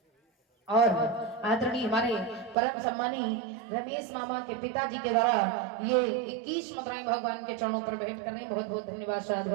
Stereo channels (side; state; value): left; drops out; at 2.6 s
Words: और आदरणीय हमारे परम सम्मानी रमेश मामा के पिताजी के द्वारा ये 21 मुद्राएं भगवान के चरणों पर भेंट कर रहे हैं। बहुत बहुत धन्यवाद